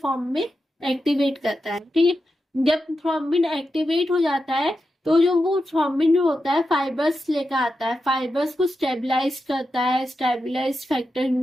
में एक्टिवेट करता है। ठीक है, जब थ्रोम्बिन एक्टिवेट हो जाता है तो जो वो थ्रोम्बिन जो होता है फाइबर्स लेकर आता है, फाइबर्स को स्टेबलाइज करता है, स्टेबलाइज फैक्टर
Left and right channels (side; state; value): both; normal; correlation 0.89